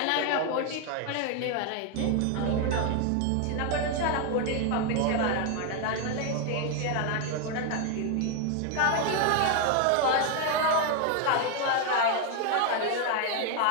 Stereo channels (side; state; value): both; different; correlation 0.01